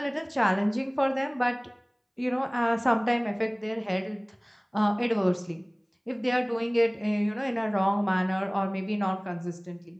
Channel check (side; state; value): both; identical; correlation 1.00